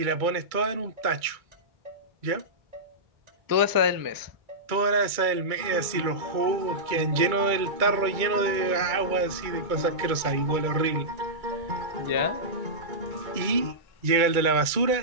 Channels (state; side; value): late; left; 2.2 ms